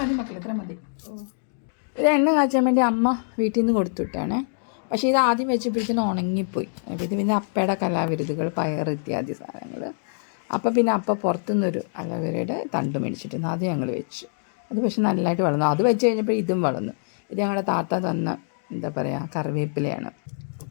മക്കളെ, എത്ര മതി. ഇത് എണ്ണ കാച്ചാൻ വേണ്ടി അമ്മ വീട്ടിൽ നിന്ന് കൊടുത്തുവിട്ടാണേ. പക്ഷേ ഇത് ആദ്യം വെച്ചപ്പോഴത്തേനും ഉണങ്ങിപ്പോയി. ഇത് പിന്നെ അപ്പയുടെ കലാവിരുതുകൾ, പയർ ഇത്യാദി സാധനങ്ങൾ. അപ്പം പിന്നെ അപ്പ പുറത്തുനിന്നൊരു അലോവേരയുടെ തണ്ട് മേടിച്ചിട്ടുണ്ട്. അത് ഞങ്ങൾ വെച്ചു. അത് പക്ഷെ നല്ലതായിട്ട് വളർന്നു. അത് വെച്ച് കഴിഞ്ഞപ്പോൾ ഇതും വളർന്നു. ഇത് ഞങ്ങളുടെ താത്ത തന്ന എന്താ പറയുക കറിവേപ്പിലയാണ്.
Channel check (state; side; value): silent; right; digital silence